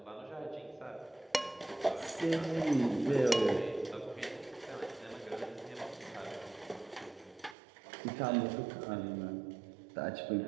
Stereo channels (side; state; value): left; drops out; at 7.6 s